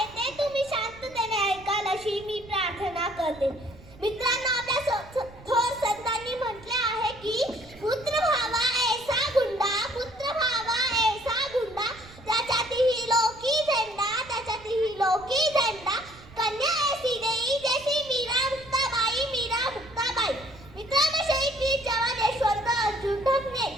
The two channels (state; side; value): noise; right; rumble, 21 dB below the sound